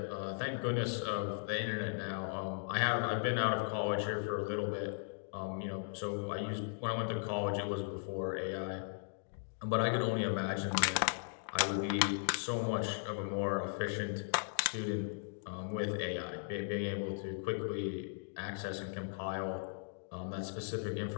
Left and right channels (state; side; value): silent; right; digital silence